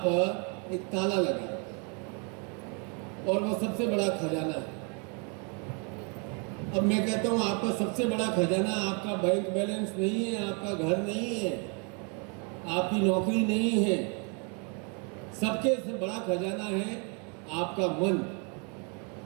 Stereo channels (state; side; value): quieter; left; 35.8 dB